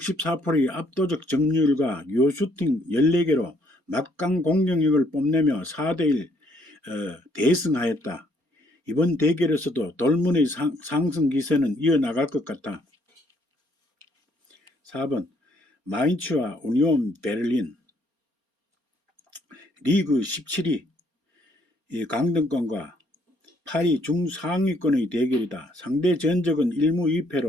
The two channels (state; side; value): late; left; 4.3 ms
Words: 압도적 점유율과 유효슈팅 14개로 막강 공격력을 뽐내며 4대1 대승하였다. 이번 대결에서도 돌문의 상승 기세는 이어나갈 것 같다. 4번 마인츠와 우니온 베를린. 리그 17위 강등권과 8위 중상위권의 대결이다. 상대 전적은 1무